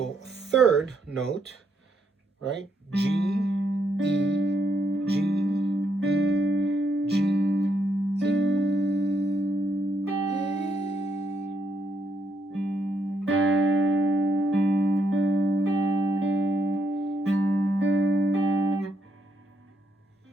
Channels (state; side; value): normal; both; correlation 0.77